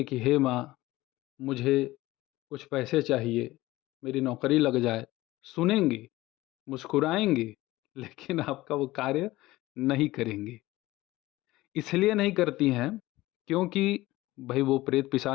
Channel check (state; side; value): quieter; right; 18.1 dB